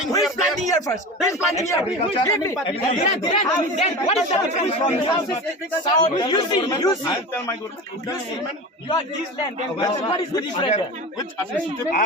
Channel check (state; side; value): normal; both; correlation 0.30